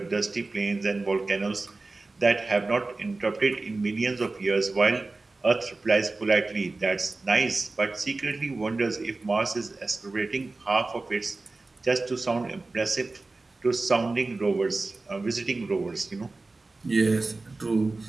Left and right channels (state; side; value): quieter; left; 3.4 dB